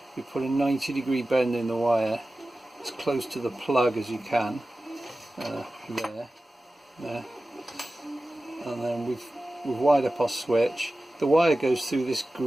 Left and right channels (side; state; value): both; normal; correlation 0.95